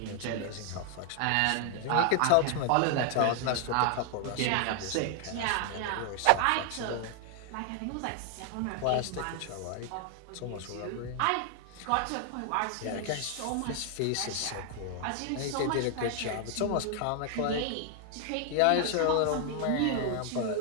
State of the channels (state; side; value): different; both; correlation 0.00